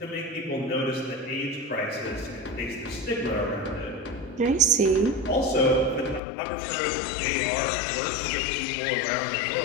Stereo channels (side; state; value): right; drops out; at 6.2 s